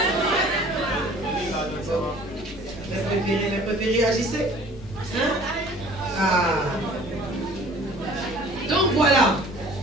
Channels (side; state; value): both; normal; correlation 0.49